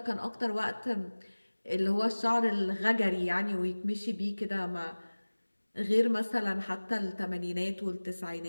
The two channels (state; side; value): inverted; both; correlation -1.00